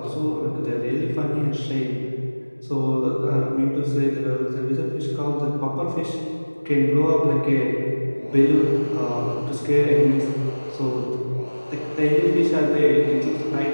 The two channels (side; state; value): both; inverted; correlation -1.00